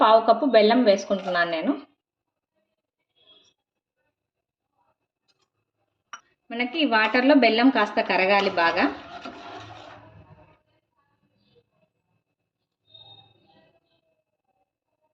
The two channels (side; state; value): both; identical; correlation 1.00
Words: 1/2 కప్పు బెల్లం వేసుకుంటున్నాను నేను. మనకి ఈ వాటర్లో బెల్లం కాస్త కరగాలి బాగా.